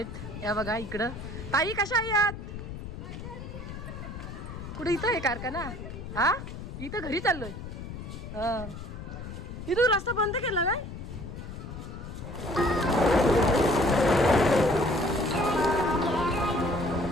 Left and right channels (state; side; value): noise; left; rumble, 9 dB below the sound